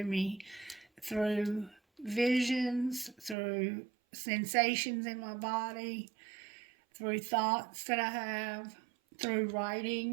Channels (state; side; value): drops out; left; at 3.4 s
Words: me, through visions, through sensations in my body, through thoughts that I have, through